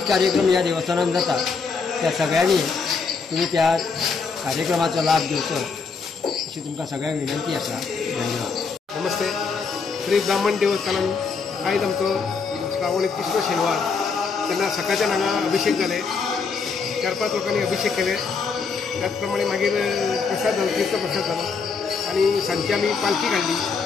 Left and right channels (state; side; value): quieter; right; 5.1 dB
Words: कार्यक्रम ह्या देवस्थानात जातात। त्या सगळ्यांनी तुम्ही त्या कार्यक्रमाचा लाभ घेवचो अशी तुमकां सगळ्यांक विनंती आसा। धन्यवाद। नमस्ते। श्री ब्राह्मण देवस्थानात आयज आमचो श्रावणी तिसरो शेनवार तेन्ना सकाळच्यान हांगा अभिषेक जाले। 4-5 लोकांनी अभिषेक केले। त्याचप्रमाणे मागीर प्रसाद जालो, तीर्थप्रसाद जालो आणि सांजची आमी पालखी काडली।